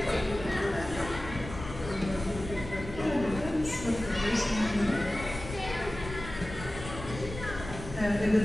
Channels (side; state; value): left; noise; rumble, 11 dB below the sound